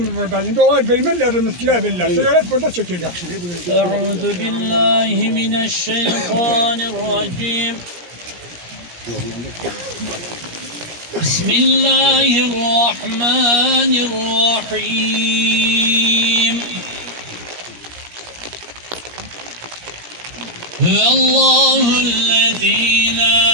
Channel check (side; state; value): left; late; 17 ms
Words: buradan. Şimdi olay bilmirler, miskiler bilirler. Sigaret burada çekin. Euzu billahi mineşşeytanirracim. Bismillahirrahmanirrahim. Huvallahu'llezî lâ